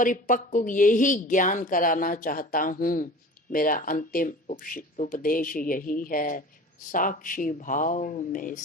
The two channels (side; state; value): both; normal; correlation 0.39